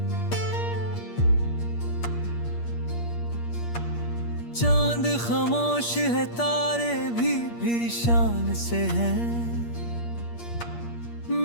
चांद खामोश है, तारे भी शान से हैं।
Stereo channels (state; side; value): late; right; 8.5 ms